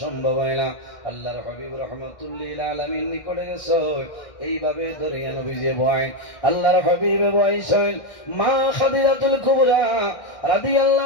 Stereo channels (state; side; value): late; right; 1.6 ms